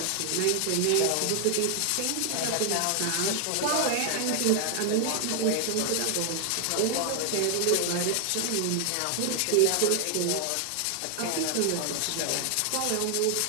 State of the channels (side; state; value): both; different; correlation 0.00